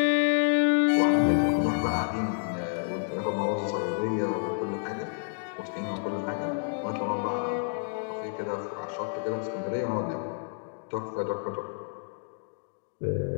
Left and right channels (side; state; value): right; silent; digital silence